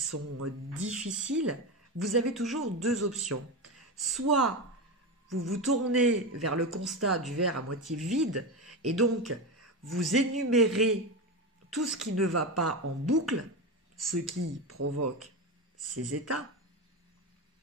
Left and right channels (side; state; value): both; normal; correlation 0.18